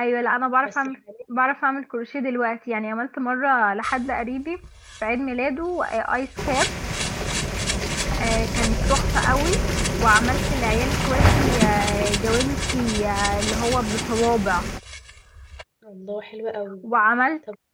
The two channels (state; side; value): identical; both; correlation 1.00